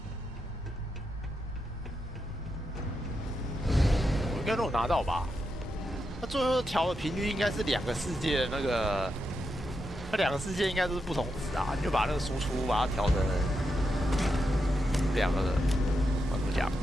我应该都有拿到吧？那最后调的频率应该是2个世界的那个。 那2个世界应该都是不同值啊，你就把那个输出把它调成2个的，怎么讲？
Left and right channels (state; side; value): normal; both; correlation 0.85